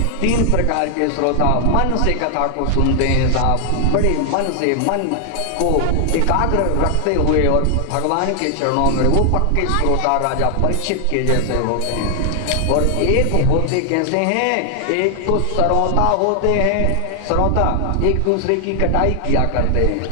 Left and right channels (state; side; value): different; both; correlation 0.00